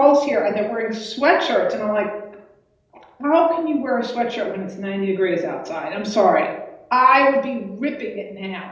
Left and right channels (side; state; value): both; identical; correlation 1.00